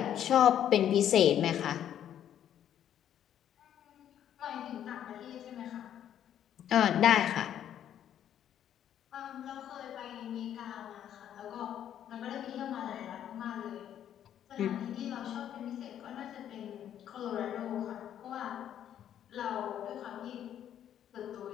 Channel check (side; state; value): right; quieter; 10.3 dB